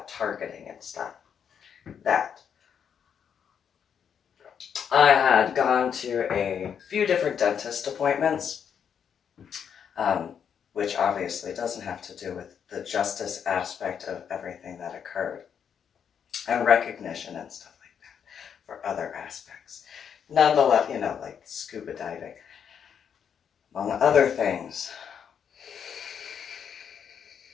targeting and stuff, that I had gone to a few different dentist appointments, um, which obviously doesn't have to do with the justice aspect of everything that occurred, and recognition and stuff like that for other aspects. Nonetheless, like scuba diving, among other things.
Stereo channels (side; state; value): right; quieter; 7.8 dB